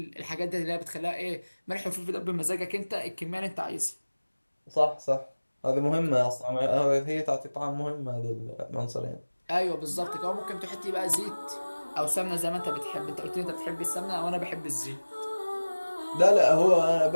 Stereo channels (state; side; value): inverted; both; correlation -1.00